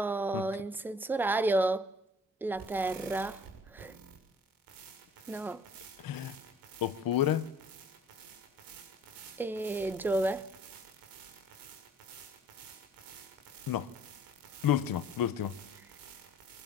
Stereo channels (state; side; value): normal; both; correlation 0.52